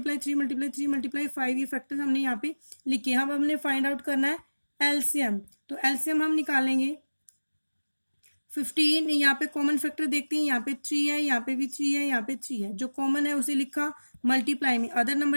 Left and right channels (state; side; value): inverted; both; correlation -1.00